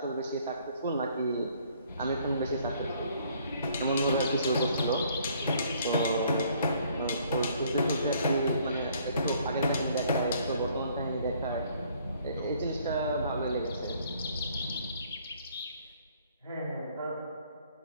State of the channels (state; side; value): inverted; both; correlation -0.62